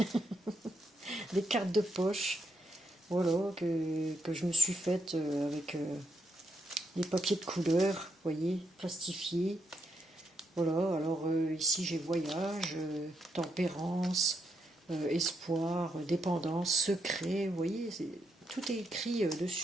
Des cartes de poche. Voilà, que je me suis faite avec des papiers de couleur, vous voyez, plastifiés. Voilà, alors ici j'ai voyage, tempérance, espoir, dépendance, secret, vous voyez, tout est écrit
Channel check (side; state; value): both; normal; correlation 0.79